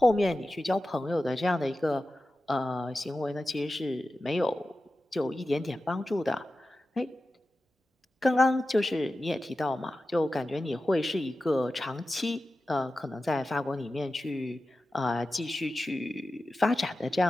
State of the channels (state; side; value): normal; both; correlation 0.93